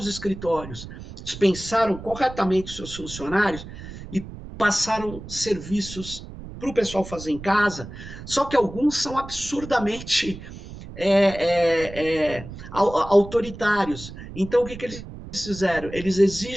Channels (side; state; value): right; noise; rumble, 13 dB below the sound